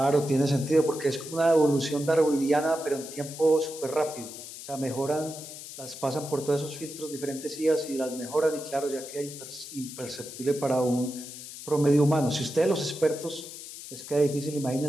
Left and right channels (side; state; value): left; noise; hiss, 12 dB below the sound